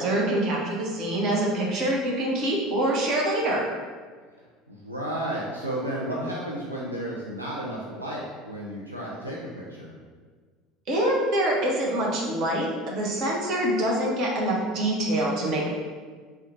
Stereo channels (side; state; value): both; normal; correlation 0.32